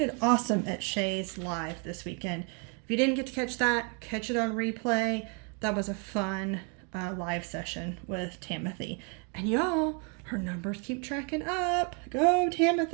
awesome at Shay's live this weekend. If you didn't get to catch that, catch it on replay. That was a fun live session with Timothy. And y'all, her numbers keep tracking up. Go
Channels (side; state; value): left; quieter; 37.0 dB